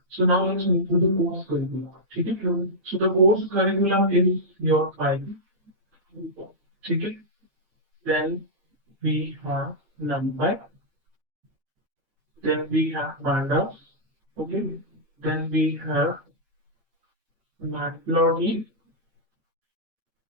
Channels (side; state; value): left; late; 8.8 ms